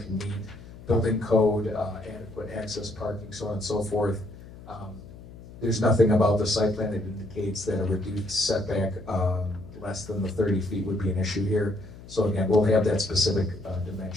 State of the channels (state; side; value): noise; left; hum, 17 dB below the sound